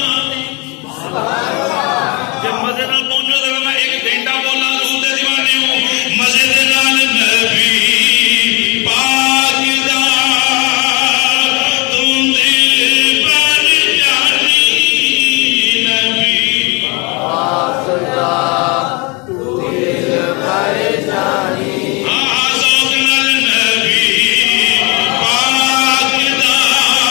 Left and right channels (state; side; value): quieter; right; 28.3 dB